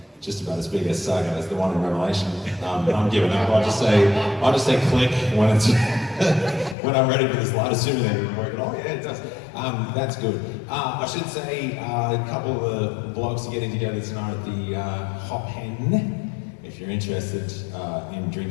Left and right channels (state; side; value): drops out; right; at 6.8 s